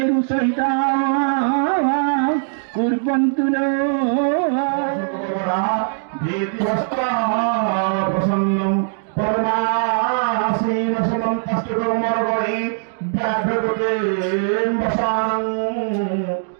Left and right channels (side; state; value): left; silent; digital silence